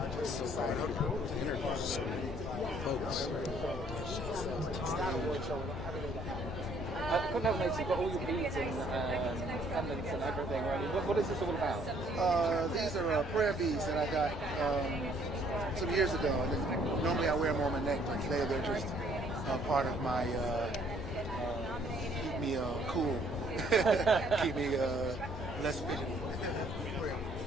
You've got all your beads and pendants and everything. Right? What is this all about? These are prayer beads that I got some years ago. And then normally I wear them on my neck, but today they're just part of my keep me cool, keep me less fidgety.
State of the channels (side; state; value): both; normal; correlation 0.63